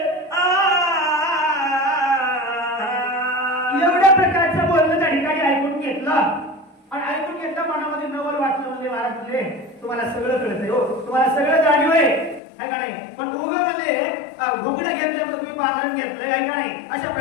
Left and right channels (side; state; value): right; drops out; at 12.4 s